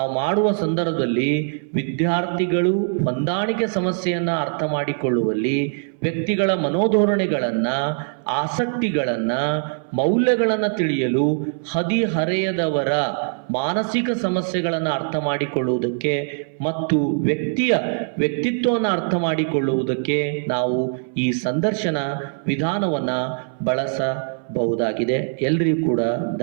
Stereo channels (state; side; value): silent; left; 61 dB below the other